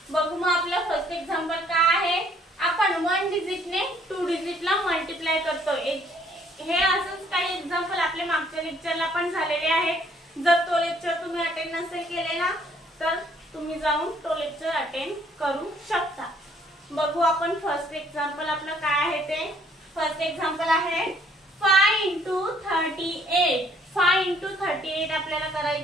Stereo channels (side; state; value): both; normal; correlation 0.63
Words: बघू मग आपलं फर्स्ट एक्झाम्पल काय आहे। आपण 1 डिजिटने 2 डिजिटला मल्टिप्लाय करतोय। हे असंच काही एग्जांपल आपले मागच्या लेक्चरला पण झालेले आहेत। जर तो लेक्चर तुम्ही अटेंड नसेल केलेला तर तुम्ही जाऊन तो लेक्चर अटेंड करू शकता। बघू आपण फर्स्ट एक्झाम्पल आपलं काय आहे ते। फर्स्ट एक्झाम्पल आहे 5 * 38। 5 * 38 आपल्याला